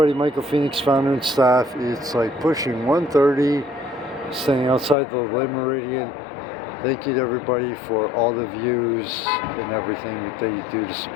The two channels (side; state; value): right; drops out; at 5.0 s